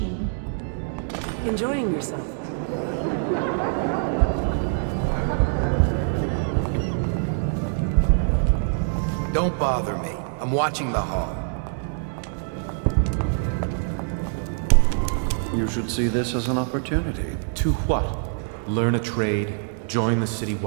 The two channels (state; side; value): silent; left; digital silence